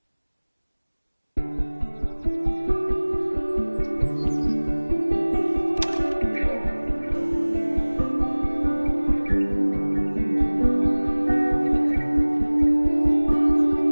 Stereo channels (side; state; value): both; inverted; correlation -1.00